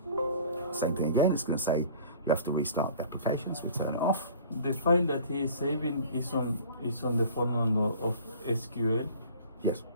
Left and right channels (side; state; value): both; inverted; correlation -0.47